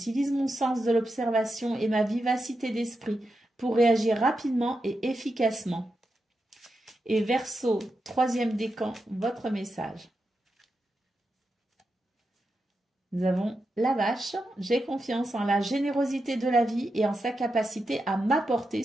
mon sens de l'observation et ma vivacité d'esprit pour réagir rapidement et efficacement. Et Verseau, troisième décan, votre message. Nous avons la vache. J'ai confiance en la générosité de la vie et en sa capacité à m'apporter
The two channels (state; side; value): normal; both; correlation 0.88